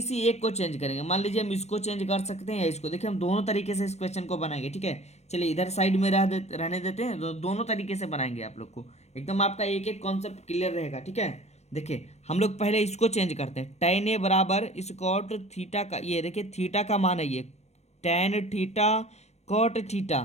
एक को चेंज करेंगे। मान लीजिए हम इसको चेंज कर सकते हैं या इसको। देखिए हम दोनों तरीके से इस क्वेश्चन को बनाएंगे, ठीक है। चलिए इधर साइड में रहने देते हैं, दोनों तरीके से बनाएंगे आप लोग को, एकदम आपका एक एक कॉन्सेप्ट क्लियर रहेगा, ठीक है। देखिए हम लोग पहले इसको चेंज करते हैं। tan a बराबर इस कॉट थीटा का, ये देखिए थीटा का मान है ये, tan theta cot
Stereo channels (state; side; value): late; right; 0.32 ms